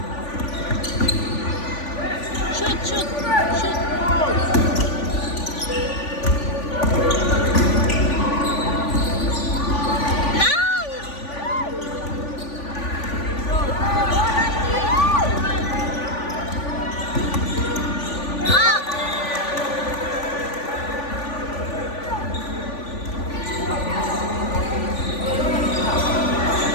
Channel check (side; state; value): right; late; 3.5 ms